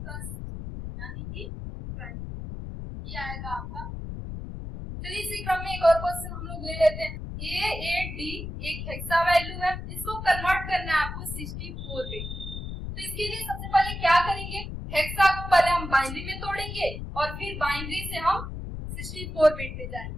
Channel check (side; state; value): left; noise; rumble, 7 dB below the sound